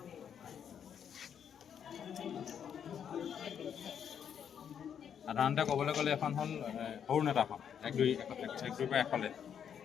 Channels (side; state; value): right; quieter; 8.3 dB